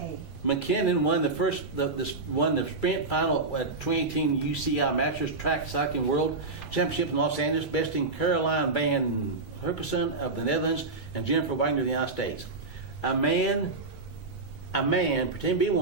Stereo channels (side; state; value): left; quieter; 3.6 dB